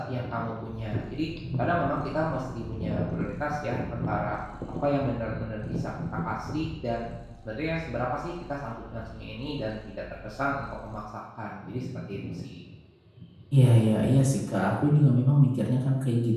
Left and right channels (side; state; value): both; identical; correlation 1.00